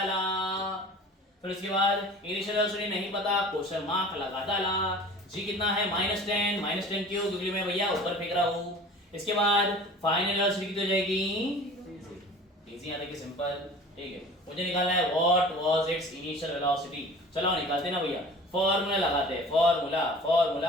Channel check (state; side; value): normal; both; correlation 0.43